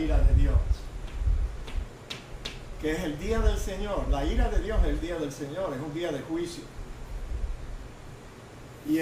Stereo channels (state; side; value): identical; both; correlation 1.00